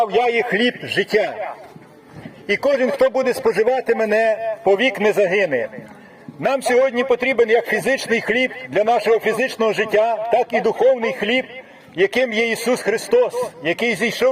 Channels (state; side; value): identical; both; correlation 1.00